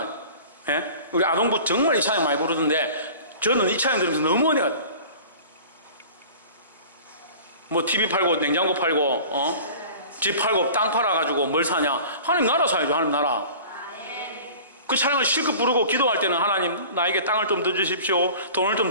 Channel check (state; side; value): inverted; both; correlation -0.41